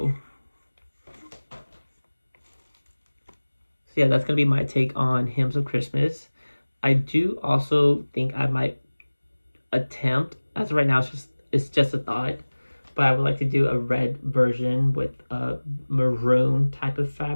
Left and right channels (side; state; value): both; inverted; correlation -1.00